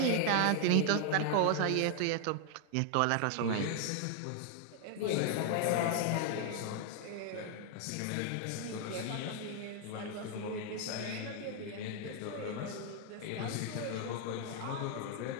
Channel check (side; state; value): both; different; correlation 0.00